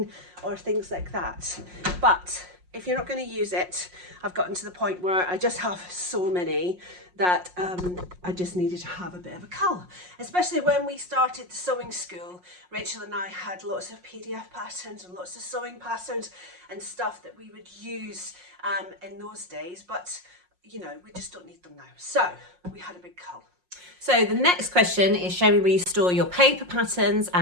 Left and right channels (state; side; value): late; left; 5.5 ms